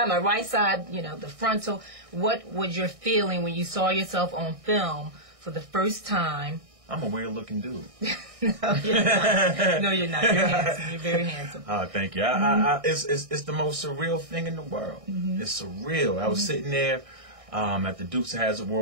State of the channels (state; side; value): late; left; 1.6 ms